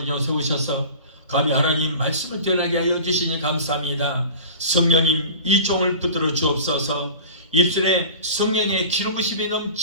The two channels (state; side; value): inverted; both; correlation -0.39